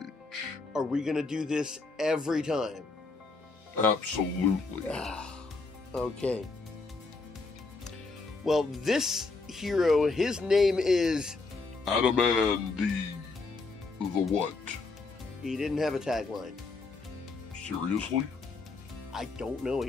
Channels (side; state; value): right; quieter; 3.8 dB